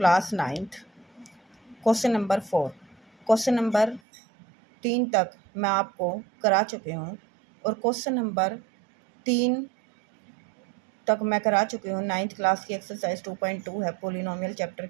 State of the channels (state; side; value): drops out; left; at 4.0 s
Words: 9th question number 4। Question number 3 तक मैं आपको करा चुके हूँ और क्वेश्चन नंबर 3 तक मैं करा चुकी हूँ। 9th क्लास की एक्सरसाइज 2.2 है पोलिनोमियल चैप्टर